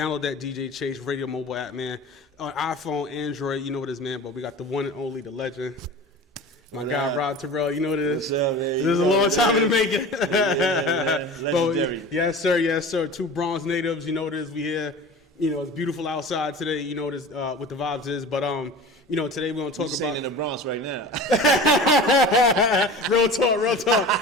that DJ Chase Radio mobile app, man. On iPhone, Android, you know what it is, man. But we got the one and only, the legend, my guy Rob Terell. You know what it is. What's up, man? This is a long time in the making. Legendary. Yes, sir. Two Bronx natives. You know what it is. We here. You know, it's beautiful outside today. You know what the vibes is. But you know, today we're gonna talk about in the Bronx right now. real talk.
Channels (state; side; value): normal; both; correlation 0.36